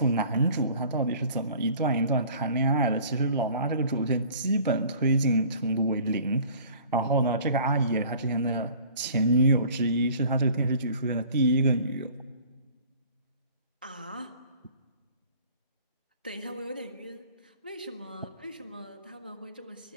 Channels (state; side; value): inverted; both; correlation -0.49